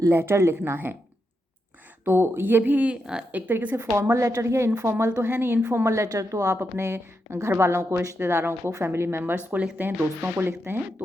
लेटर लिखना है। तो ये भी एक तरीके से फॉर्मल लेटर ही है, इनफॉर्मल तो है नहीं। इनफॉर्मल लेटर तो आप अपने घर वालों को, रिश्तेदारों को, फैमिली मेम्बर्स को लिखते हैं, दोस्तों को लिखते हैं,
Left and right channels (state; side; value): normal; both; correlation 0.84